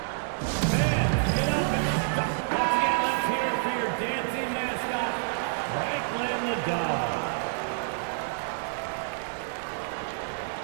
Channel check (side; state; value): left; silent; digital silence